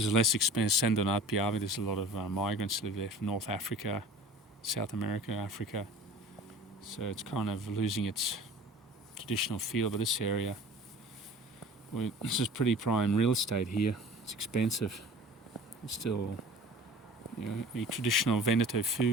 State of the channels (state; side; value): normal; both; correlation 0.43